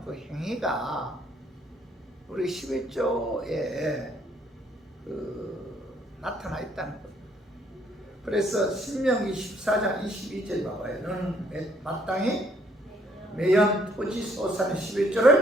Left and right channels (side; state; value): both; normal; correlation 0.66